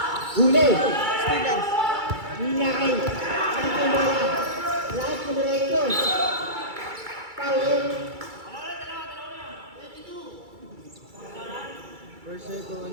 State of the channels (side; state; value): left; late; 2.3 ms